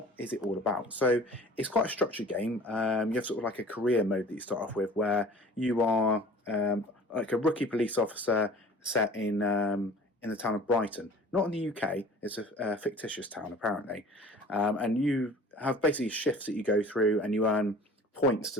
is it all about? So it's quite a structured game. You have sort of like a career mode that you start off with, where you are like a rookie police officer set in the town of Brighton, not in the UK. It's a fictitious town apparently, and you have basically shifts that you go through, and you earn points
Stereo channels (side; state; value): both; normal; correlation 0.45